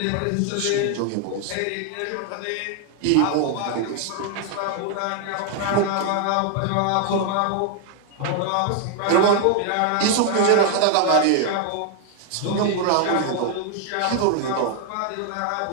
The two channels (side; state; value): both; different; correlation 0.00